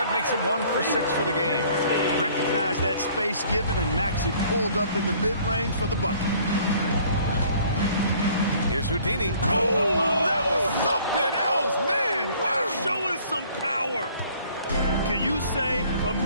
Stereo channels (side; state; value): both; inverted; correlation -0.56